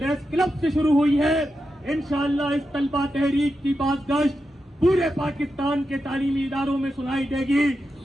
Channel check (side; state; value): both; normal; correlation 0.88